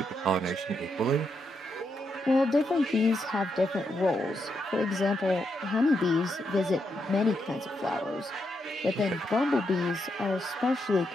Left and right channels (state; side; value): normal; both; correlation 0.81